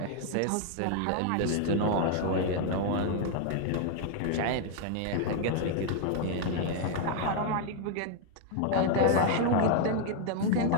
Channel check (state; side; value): different; both; correlation 0.00